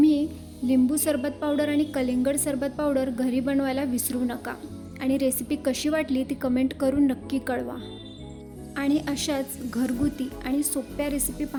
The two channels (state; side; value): identical; both; correlation 1.00